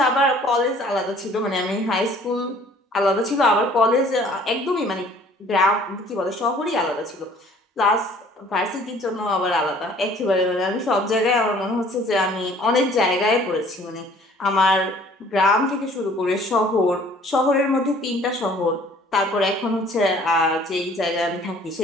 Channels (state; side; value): normal; both; correlation 0.54